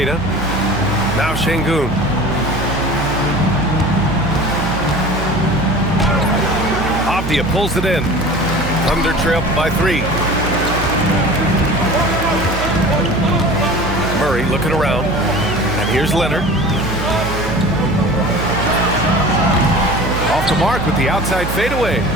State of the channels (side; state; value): right; noise; hum, 6 dB below the sound